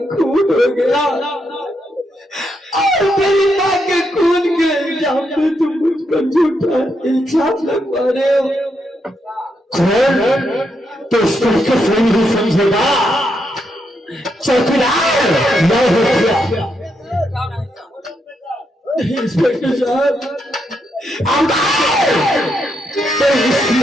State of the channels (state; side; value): normal; both; correlation 0.81